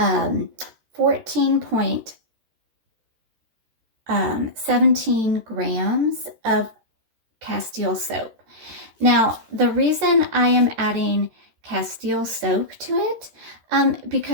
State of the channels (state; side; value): late; left; 13 ms